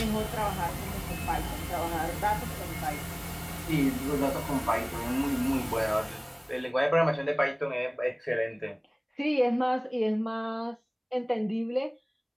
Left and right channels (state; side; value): identical; both; correlation 1.00